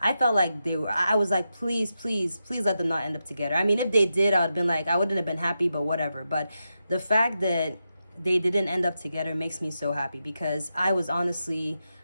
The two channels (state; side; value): inverted; both; correlation -0.88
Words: felt like I was like, please let them not end up together. I mean, if they did, I would have been like, I wouldn't have been happy, but whatever. But the fact that they didn't end up together makes me so happy, because I was honestly,